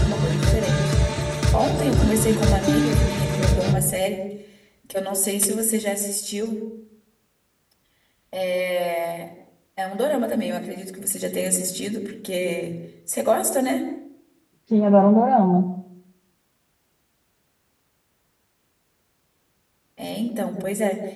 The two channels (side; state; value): both; identical; correlation 1.00